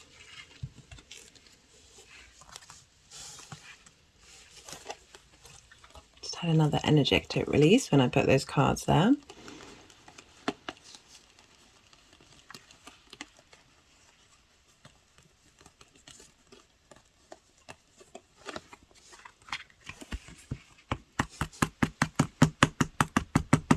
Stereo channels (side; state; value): both; identical; correlation 1.00